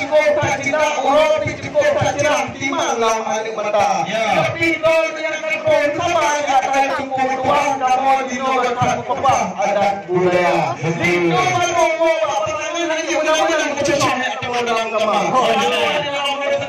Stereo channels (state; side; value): identical; both; correlation 1.00